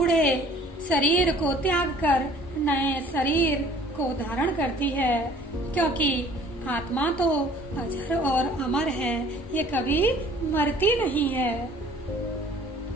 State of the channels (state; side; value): normal; both; correlation 0.52